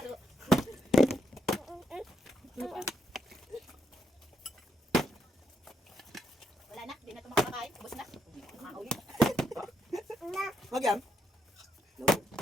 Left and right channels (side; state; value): both; normal; correlation 0.78